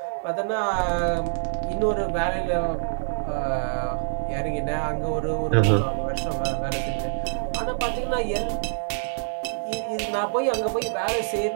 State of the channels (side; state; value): left; silent; 56 dB below the other